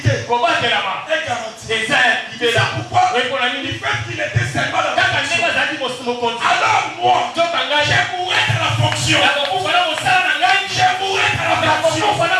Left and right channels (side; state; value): both; identical; correlation 1.00